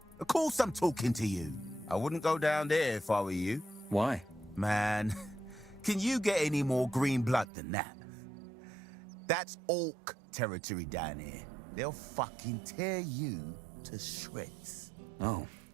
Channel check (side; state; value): left; drops out; at 7.5 s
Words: Of course I'm talking to you. I wouldn't go down there if I were you. Why? Man, can you get any more green blood than that? That's orc territory down here. They'll fucking tear you to shreds. Oh.